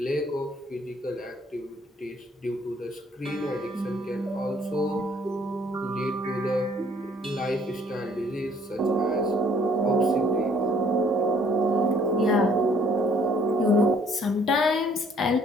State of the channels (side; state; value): both; normal; correlation 0.61